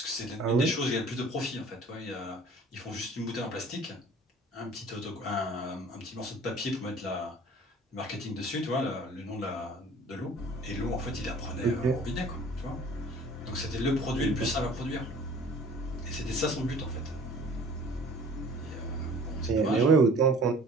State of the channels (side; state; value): both; normal; correlation 0.48